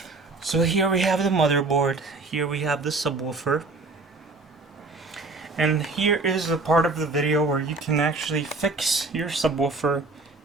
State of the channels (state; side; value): quieter; left; 3.5 dB